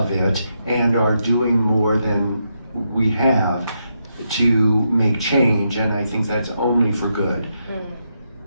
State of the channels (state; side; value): inverted; both; correlation -0.82